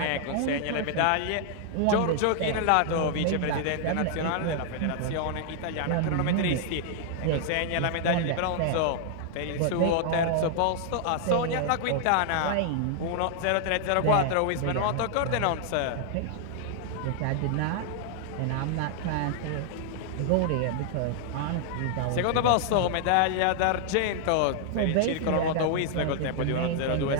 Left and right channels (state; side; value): different; both; correlation -0.01